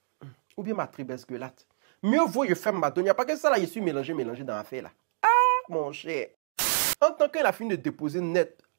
Ou bien ma tribesse gueulate. Mieux vaut je ferme ma donia. Parce que ça là, je suis mélangé dans l'affaire là. Ah, mon cher. En tant qu'il a fini de déposer net,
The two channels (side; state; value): left; silent; digital silence